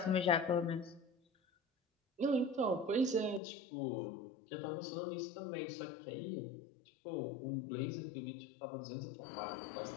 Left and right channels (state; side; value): drops out; right; at 3.4 s